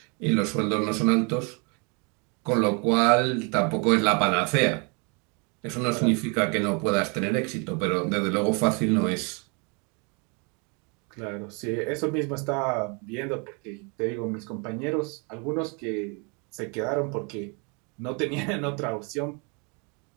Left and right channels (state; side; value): quieter; left; 33.8 dB